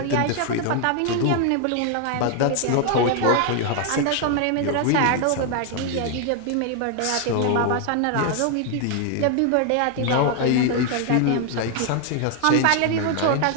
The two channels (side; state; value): both; different; correlation 0.00